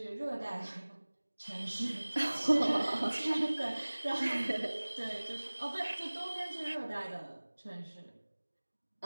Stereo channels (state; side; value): inverted; both; correlation -1.00